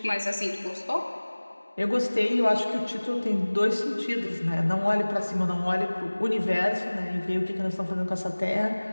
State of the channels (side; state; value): both; inverted; correlation -1.00